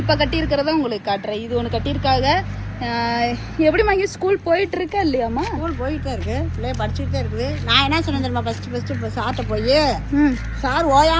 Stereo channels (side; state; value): both; identical; correlation 1.00